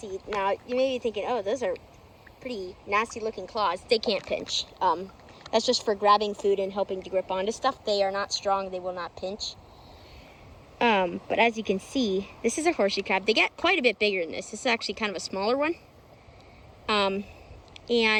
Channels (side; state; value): both; identical; correlation 1.00